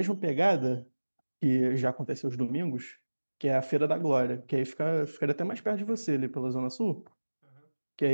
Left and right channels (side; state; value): both; inverted; correlation -1.00